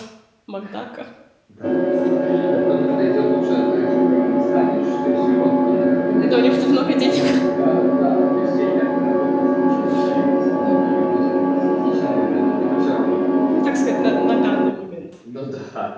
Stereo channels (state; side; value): identical; both; correlation 1.00